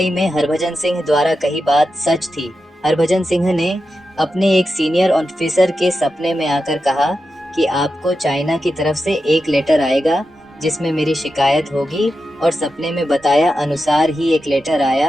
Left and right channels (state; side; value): normal; both; correlation 0.89